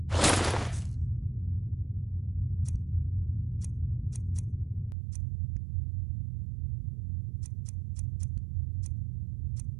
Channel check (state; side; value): drops out; left; at 5.0 s